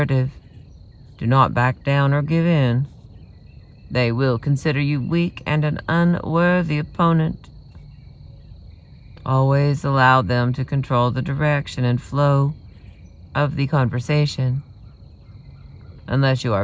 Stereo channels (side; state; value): both; identical; correlation 1.00